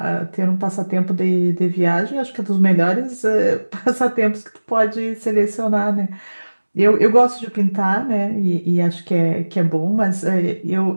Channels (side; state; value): both; inverted; correlation -1.00